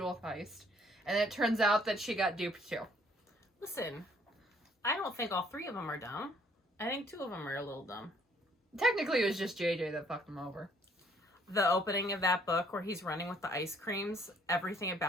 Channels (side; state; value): both; normal; correlation 0.62